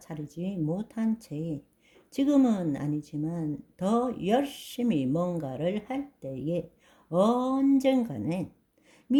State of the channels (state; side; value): identical; both; correlation 1.00